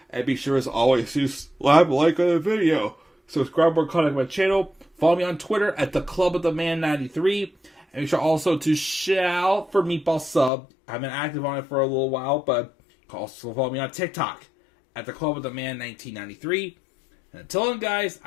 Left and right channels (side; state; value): right; drops out; at 10.5 s